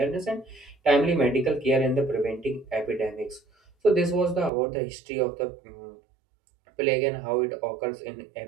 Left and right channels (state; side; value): drops out; left; at 4.5 s